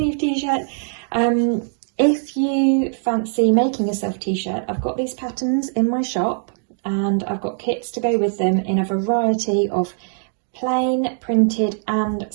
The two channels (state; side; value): silent; left; digital silence